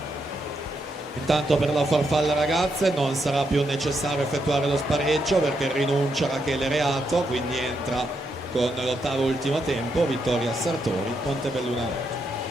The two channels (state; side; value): normal; both; correlation 0.80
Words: Intanto per la farfalla ragazze non sarà più necessario effettuare lo spareggio perché rinuncia Rachele Reato, quindi entra con l'8° ultimo tempo Vittoria Sartori, Montebelluna.